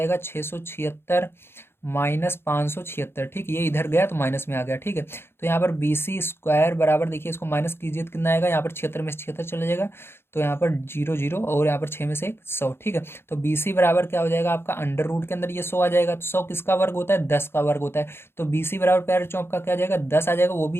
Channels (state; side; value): late; right; 0.11 ms